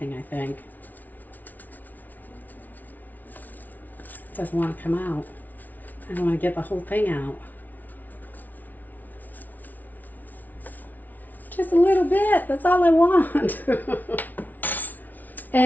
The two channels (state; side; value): late; right; 0.080 ms